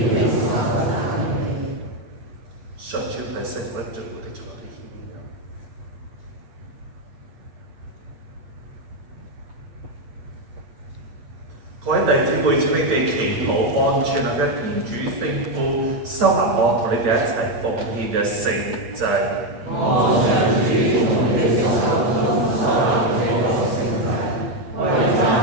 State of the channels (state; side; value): late; left; 8.8 ms